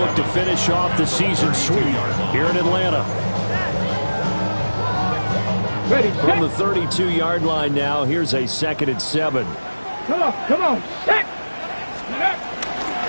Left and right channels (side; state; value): both; inverted; correlation -1.00